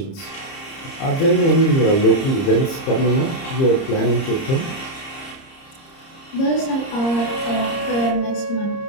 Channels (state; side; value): late; right; 30 ms